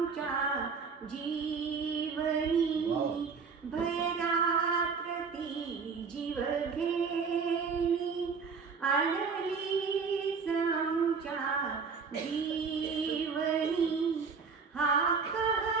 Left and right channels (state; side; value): quieter; left; 5.3 dB